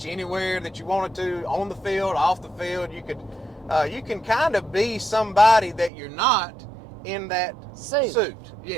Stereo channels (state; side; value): drops out; left; at 5.9 s